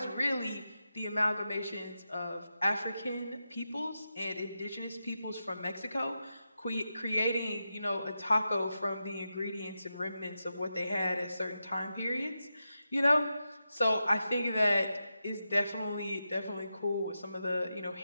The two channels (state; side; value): inverted; both; correlation -0.89